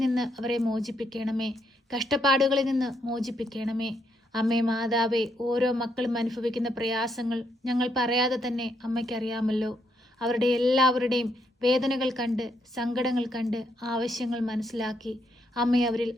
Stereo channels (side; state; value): both; normal; correlation 0.76